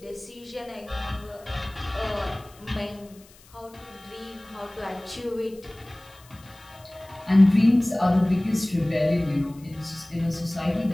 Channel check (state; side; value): noise; left; hiss, 26 dB below the sound